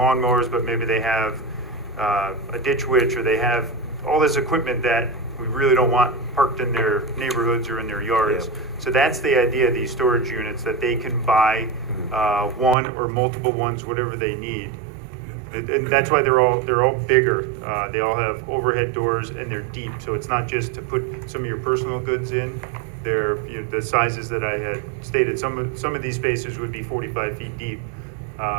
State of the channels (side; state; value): left; drops out; at 12.8 s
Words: but maybe they have a ditch witch, or they have all this equipment that we really don't want parked in their neighborhoods or in their yards. Yep. So that's the idea of these storage units, that they can buy one or multiple ones, whatever they need. And that's why they're all bigger. They all have overhead doors, and they're deep. So it's not just to put some of your personal goods in. They're the sizes that I had stated. Some of these spaces would be 45 feet deep,